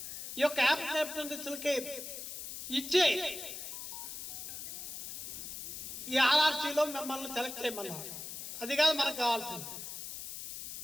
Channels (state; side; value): noise; left; hiss, 8 dB below the sound